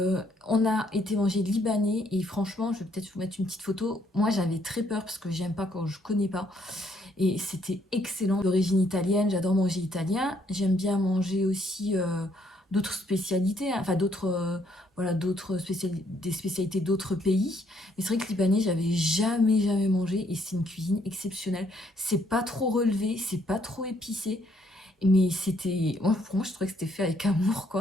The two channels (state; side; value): normal; both; correlation 0.69